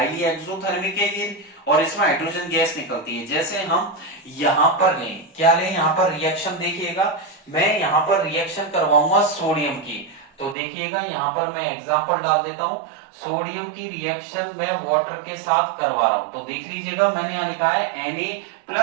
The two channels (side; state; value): left; drops out; at 10.6 s